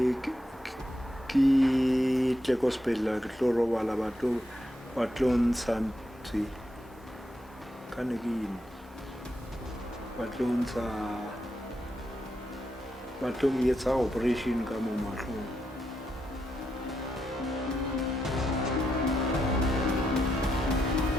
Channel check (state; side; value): normal; both; correlation 0.83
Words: tle ko sepetlele ke tlo robala ba tlo ntsha ntse ka ne ke eng ba tlo etsa operation ka mo mahlong